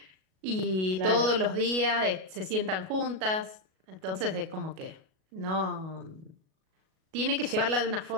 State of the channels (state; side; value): late; left; 37 ms